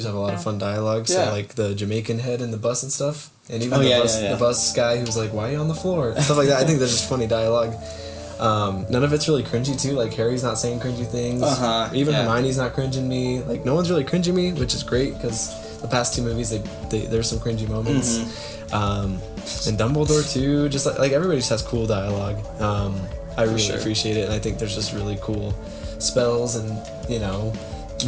have a lot of fun dialogue. So like the Jamaican head in the bus and stuff, and even the bus guy who's like, "Why are you on the floor?" Stuff like that. I think there's just funny dialogue. None of it's really cringy too. Like, Harry's not saying cringy things. Even Hermione's not cringing me. Like, no one's really cringing me, which is great because the past two movies there's some cringy moments. And Dumbledore too. Just like everybody just has cool dialogue. I really appreciate it, and I think there's just really cool spells and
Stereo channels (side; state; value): both; identical; correlation 1.00